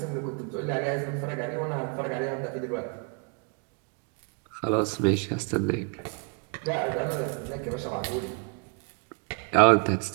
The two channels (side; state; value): left; quieter; 37.5 dB